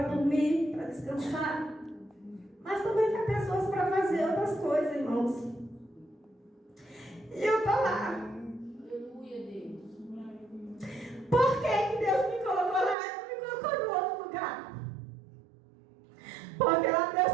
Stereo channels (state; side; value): drops out; left; at 13.0 s